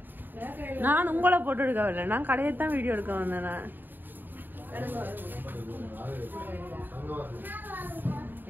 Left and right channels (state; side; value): late; left; 0.092 ms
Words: நான் உங்களை போட்டு எடுக்க வரல, நான் கடையத்தான் வீடியோ எடுக்க வந்தேன்.